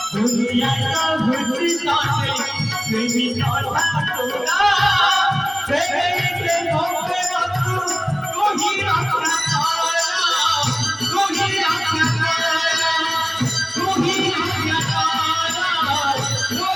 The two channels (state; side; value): identical; both; correlation 1.00